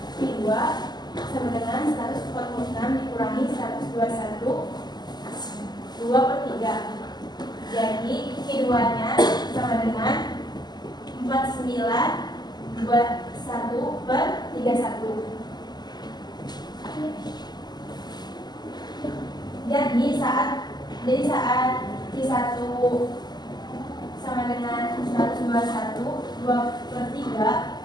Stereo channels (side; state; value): right; late; 0.20 ms